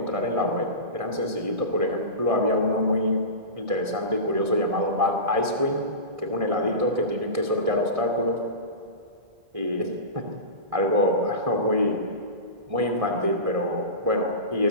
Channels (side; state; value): left; late; 1.6 ms